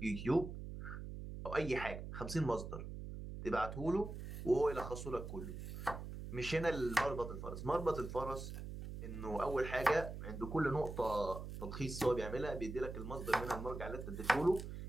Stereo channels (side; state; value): right; noise; hum, 8 dB below the sound